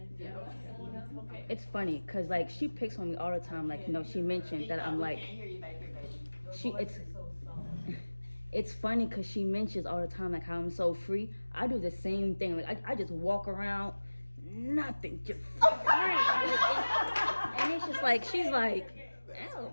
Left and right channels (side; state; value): both; inverted; correlation -1.00